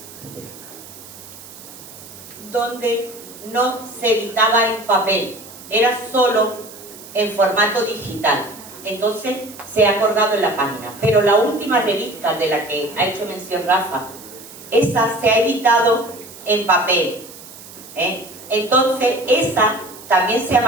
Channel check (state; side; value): noise; right; hiss, 17 dB below the sound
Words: donde no se editaba en papel, era solo en formato digital. Entonces se ha acordado en la página. Pero la última revista de la que ha hecho mención Rafa, esa se ha editado en papel. Entonces esa también se ha